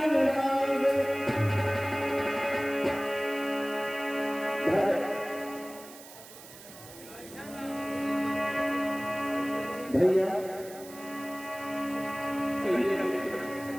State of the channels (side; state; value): right; noise; hiss, 17 dB below the sound